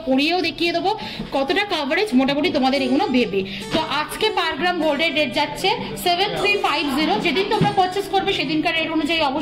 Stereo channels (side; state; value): both; identical; correlation 1.00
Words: পরিয়েও দেখিয়ে দেবো কতটা কাভারেজ মোটামুটি তোমাদের এগুলো দেবে। তো আজকে পার গ্রাম গোল্ডের রেট যাচ্ছে 7350। যেদিন তোমরা পারচেস করবে সেদিনকার রেট অনুযায়ী